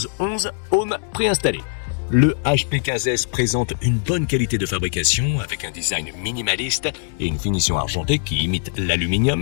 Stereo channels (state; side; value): silent; right; digital silence